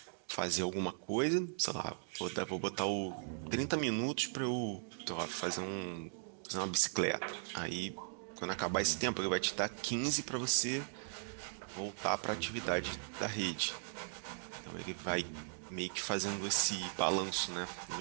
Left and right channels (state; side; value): silent; left; digital silence